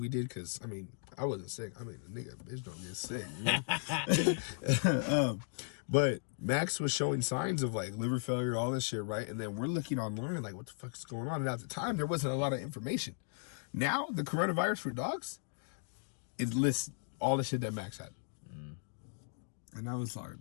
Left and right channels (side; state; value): right; silent; digital silence